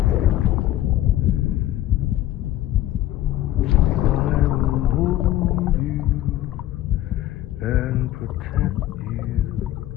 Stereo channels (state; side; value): quieter; right; 14.0 dB